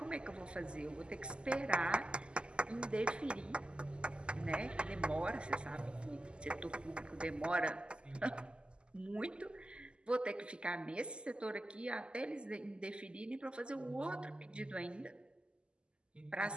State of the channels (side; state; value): left; late; 0.051 ms